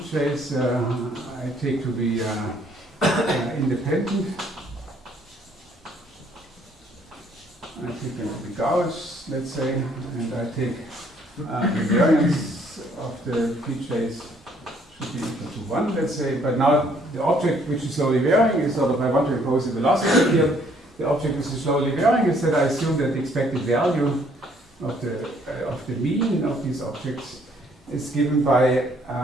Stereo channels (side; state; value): both; normal; correlation 0.64